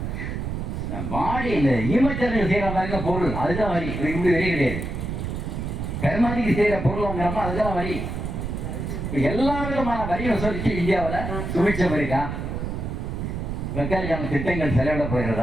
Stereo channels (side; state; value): right; noise; rumble, 4 dB below the sound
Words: பாடி இந்த ஈமச்சரங்க செய்கிற மாதிரி பொருள் அதுதான் வரி. இப்படி வரி கிடையாது. கருமாதிக்கு செய்கிற பொருள் வாங்குறப்ப அதுதான் வரி. எல்லா விதமான வரி வசூலிச்சு இந்தியாவில் சுமிச்சம் இருக்கா? வெக்காலிக்கான திட்டங்கள் செலவிட